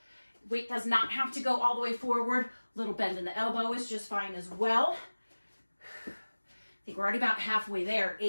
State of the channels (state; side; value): inverted; both; correlation -1.00